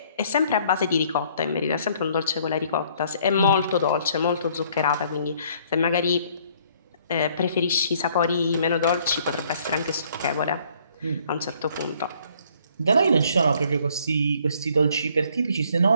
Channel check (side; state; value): both; inverted; correlation -0.62